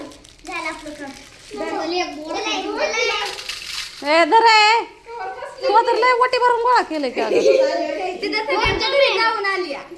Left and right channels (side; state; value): both; identical; correlation 1.00